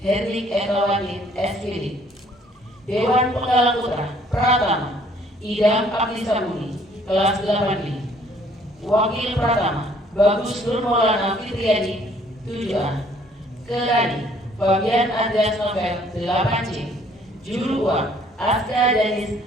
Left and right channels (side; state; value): both; normal; correlation 0.60